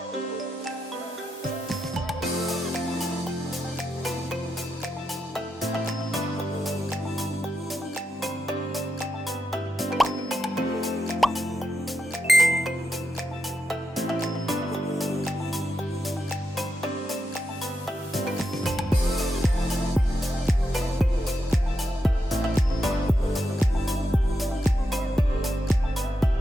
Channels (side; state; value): both; normal; correlation 0.85